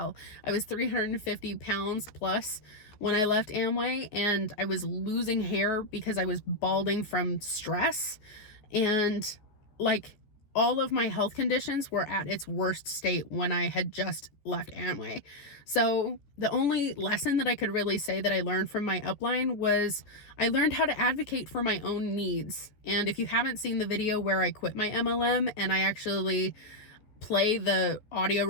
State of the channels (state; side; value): late; right; 14 ms